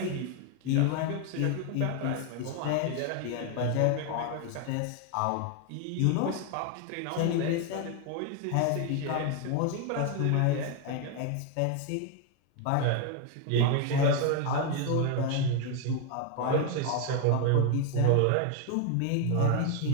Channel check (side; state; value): both; different; correlation 0.01